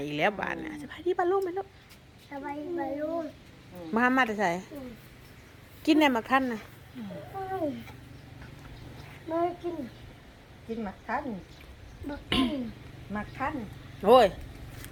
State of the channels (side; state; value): both; identical; correlation 1.00